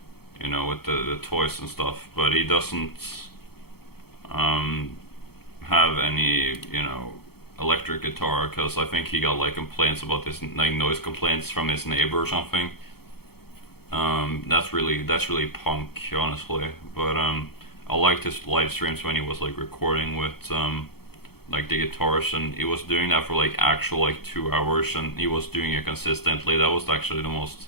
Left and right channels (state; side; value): late; right; 0.96 ms